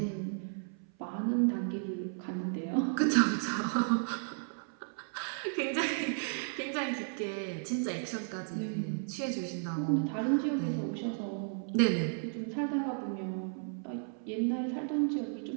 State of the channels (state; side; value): silent; left; 55 dB below the other